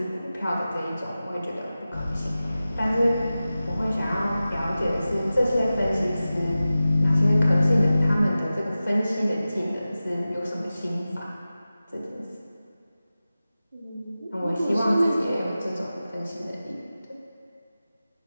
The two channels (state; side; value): inverted; both; correlation -0.95